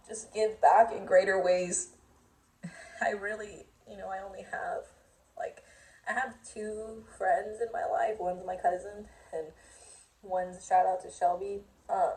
just give back in greater ways. I really, you know, I only have, like, I have two friends in my life. One's my cousin, and one's, shout out to Shelby.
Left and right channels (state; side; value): identical; both; correlation 1.00